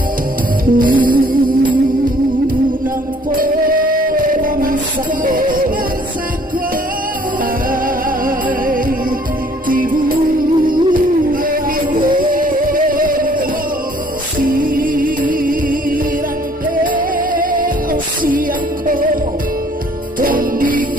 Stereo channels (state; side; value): normal; both; correlation 0.59